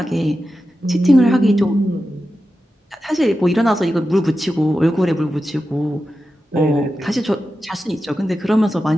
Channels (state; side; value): normal; both; correlation 0.91